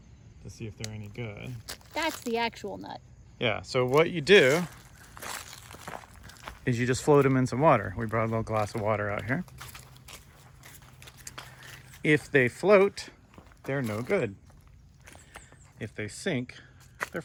to see if they're any good. That's the actual nut. Yeah, so what you do is you just float them in some water. We brought a little glass of water out here. If they float, they're no good. If they sink, they're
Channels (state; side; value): identical; both; correlation 1.00